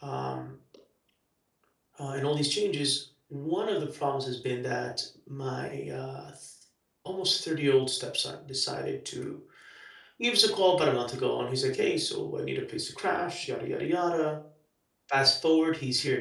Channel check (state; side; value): identical; both; correlation 1.00